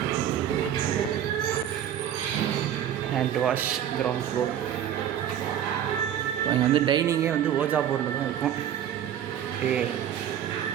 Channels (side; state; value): left; quieter; 10.2 dB